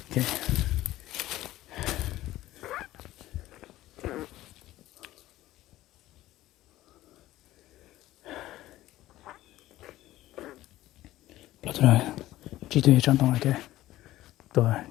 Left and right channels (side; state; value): right; quieter; 15.6 dB